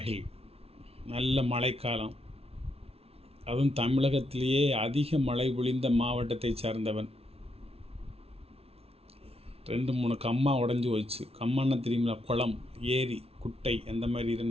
நல்ல மழைக்காலம், அதுவும் தமிழகத்திலேயே அதிக மழை பொழிந்த மாவட்டத்தை சார்ந்தவன். 2-3 கம்மா உடஞ்சி போச்சு. கம்மான்னா தெரியுங்களா? குளம், ஏரி, குட்டை அந்த மாதிரி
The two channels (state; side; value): late; left; 0.29 ms